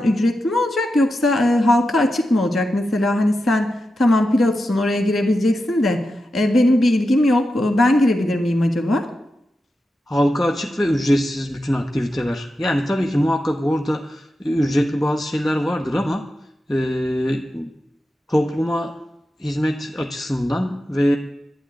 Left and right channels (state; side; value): normal; both; correlation 0.90